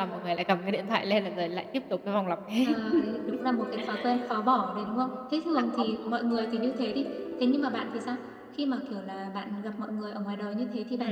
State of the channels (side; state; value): both; identical; correlation 1.00